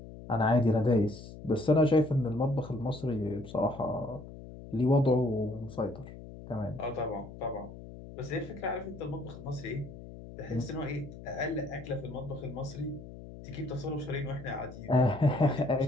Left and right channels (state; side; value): noise; left; hum, 14 dB below the sound